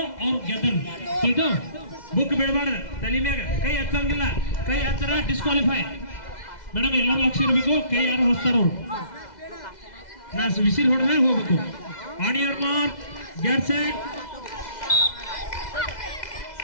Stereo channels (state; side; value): late; right; 2.0 ms